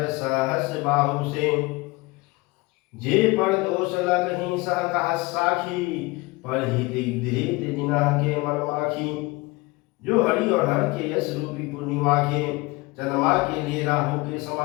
सहस बाहु से। जे पर दोष लगहि सह कहा साखी पर हित धृत जिनह के मन माखी। जो हरि और हर के यश रूपी पूर्णिमा के चंद्रमा के लिए राहु के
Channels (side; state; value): right; quieter; 23.5 dB